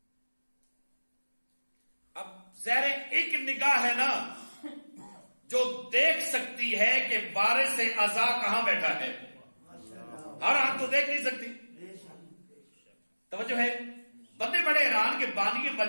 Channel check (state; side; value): inverted; both; correlation -1.00